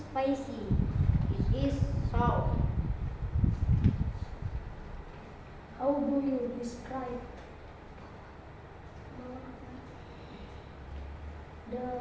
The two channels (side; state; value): both; identical; correlation 1.00